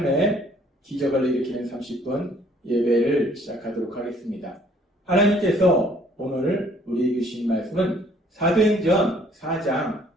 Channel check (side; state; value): both; normal; correlation 0.60